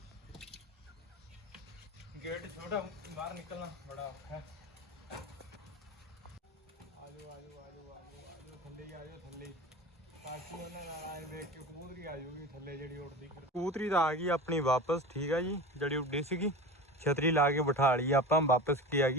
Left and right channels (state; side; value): normal; both; correlation 0.31